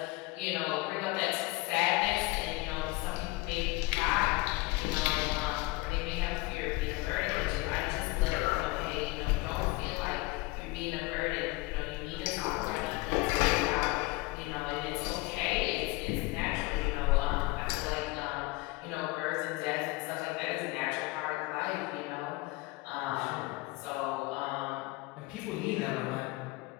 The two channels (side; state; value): right; quieter; 22.4 dB